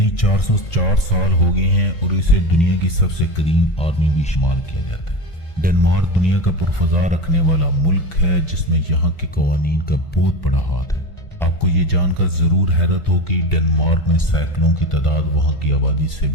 404 سال ہو گئے ہیں، اور اسے دنیا کی سب سے قدیم آرمی بھی شمار کیا جاتا ہے۔ ڈنمارک دنیا کا پرفضا رکھنے والا ملک ہے، جس میں یہاں کے قوانین کا بہت بڑا ہاتھ ہے۔ آپ کو یہ جان کر ضرور حیرت ہو کہ ڈنمارک میں سائیکلوں کی تعداد وہاں کی آبادی سے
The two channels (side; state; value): right; late; 1.5 ms